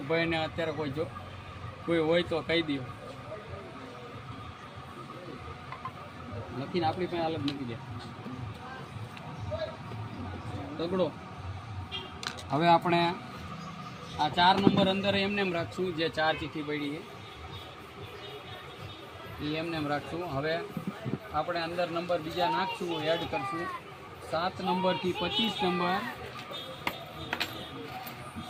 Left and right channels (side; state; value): both; identical; correlation 1.00